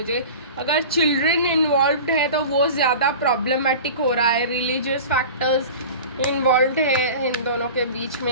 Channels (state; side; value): inverted; both; correlation -0.36